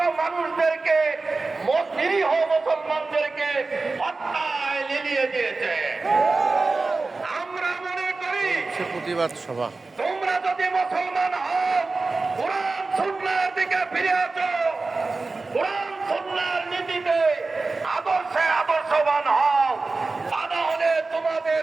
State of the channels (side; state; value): left; quieter; 3.7 dB